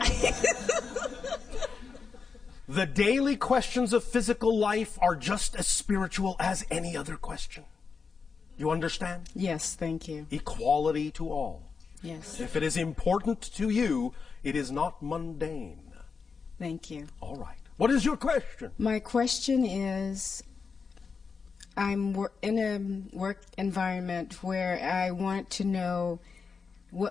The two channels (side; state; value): right; quieter; 5.3 dB